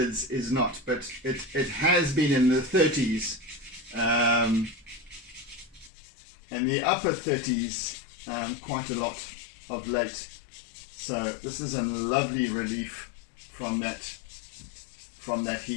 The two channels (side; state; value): right; drops out; at 5.9 s